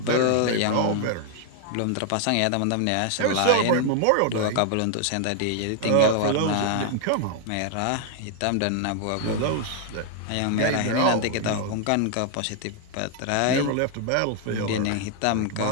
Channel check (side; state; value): both; different; correlation 0.00